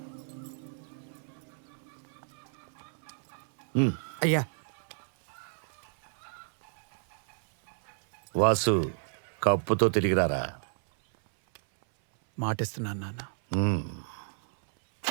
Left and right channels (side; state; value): left; silent; 57 dB below the other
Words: అయ్యా. వాసు, కప్పుతో తిరిగిరారా. మాటిస్తున్నాను నాన్న.